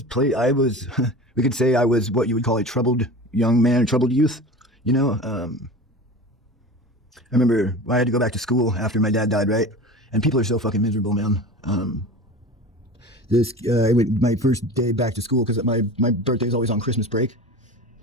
We could say I was what you would call a troubled young man, a troubled youth, I remember I had to go back to school after my dad died, right? And people are so fucking miserable, man. My first day back to school, because my birthday is always on Christmas break.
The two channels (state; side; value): normal; both; correlation 0.33